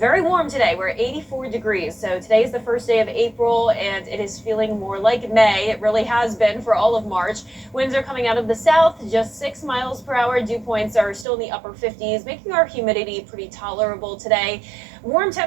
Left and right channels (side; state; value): left; drops out; at 11.2 s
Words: Very warm today. We're at 84 degrees. So today is the first day of April, and it is feeling more like May. It really has been for all of March. Winds are coming out of the south, just 6 miles per hour. Dew points are still in the upper 50s, making our humidity pretty tolerable today. Warm